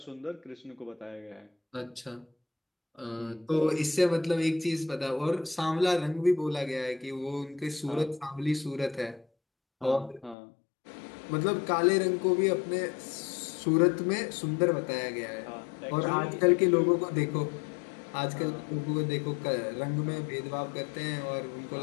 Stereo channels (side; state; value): right; drops out; at 10.4 s